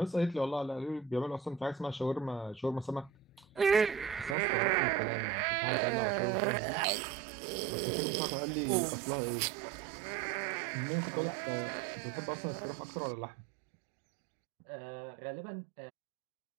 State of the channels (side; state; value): left; drops out; at 4.4 s